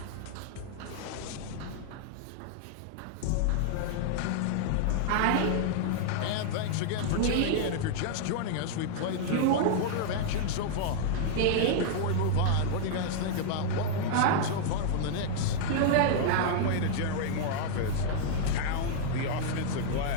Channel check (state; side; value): different; both; correlation -0.01